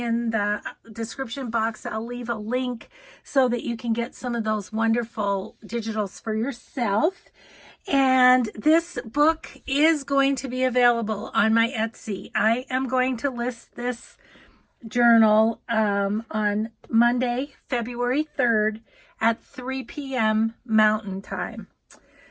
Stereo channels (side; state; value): both; identical; correlation 1.00